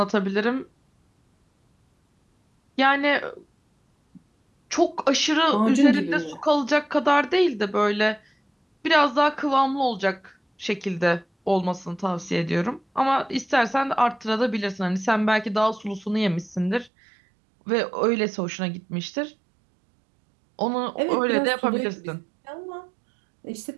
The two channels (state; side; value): drops out; left; at 16.9 s